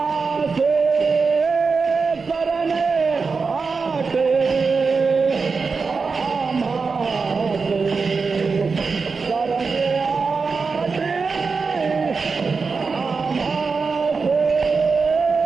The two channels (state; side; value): quieter; left; 4.7 dB